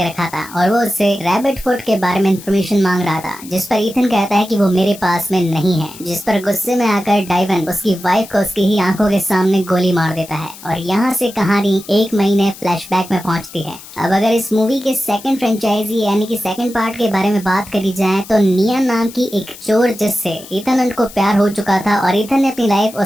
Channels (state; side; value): noise; left; hiss, 17 dB below the sound